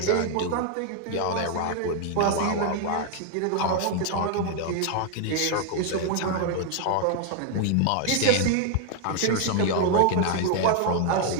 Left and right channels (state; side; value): different; both; correlation 0.00